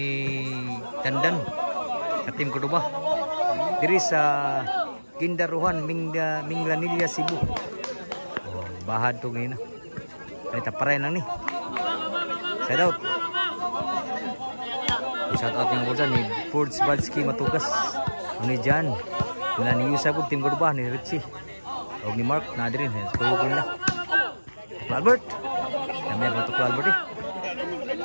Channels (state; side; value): inverted; both; correlation -1.00